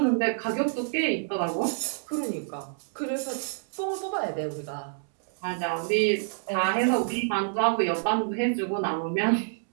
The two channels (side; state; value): left; silent; digital silence